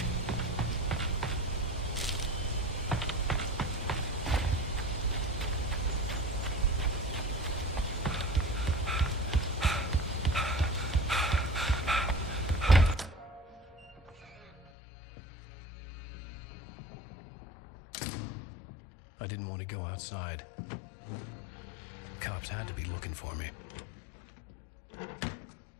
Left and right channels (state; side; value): drops out; right; at 14.7 s